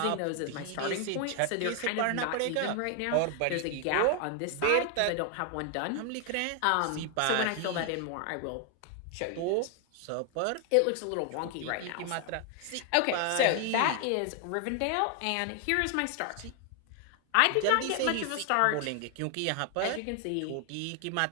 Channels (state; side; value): different; both; correlation 0.00